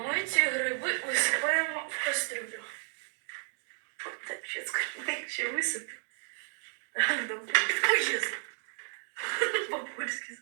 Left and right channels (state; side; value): silent; left; digital silence